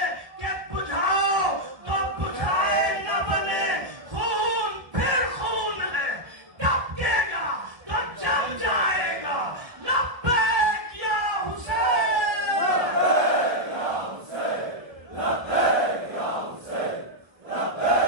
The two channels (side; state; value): left; late; 1.0 ms